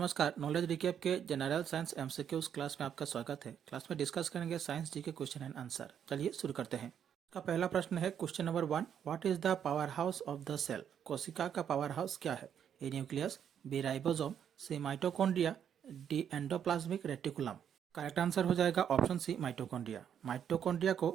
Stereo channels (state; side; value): quieter; left; 8.7 dB